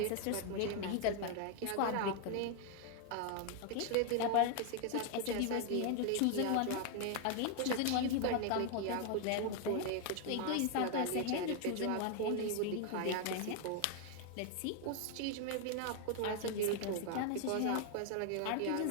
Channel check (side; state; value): both; different; correlation 0.00